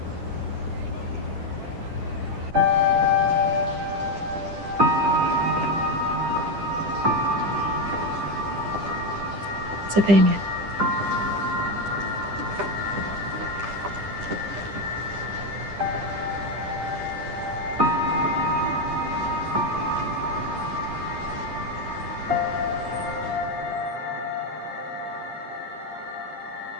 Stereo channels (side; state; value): left; late; 10 ms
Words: 在背面。